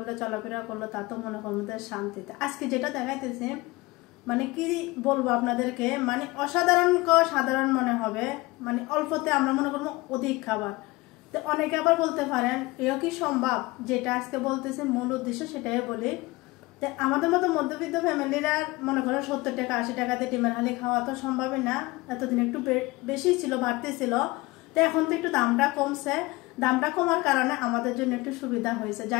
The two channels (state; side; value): quieter; right; 21.7 dB